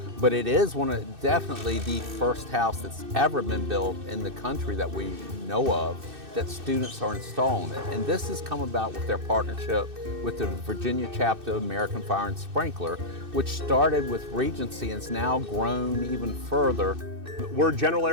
But it is definitely the first house that's ever been built in the country that we know of that students are installing it. And this has come about with their partnership with the Virginia chapter of American Fire and Sprinkler, which started with Regency and has now grown even further. We're General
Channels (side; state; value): left; late; 2.6 ms